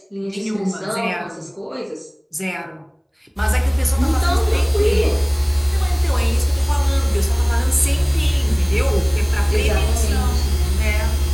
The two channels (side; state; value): both; identical; correlation 1.00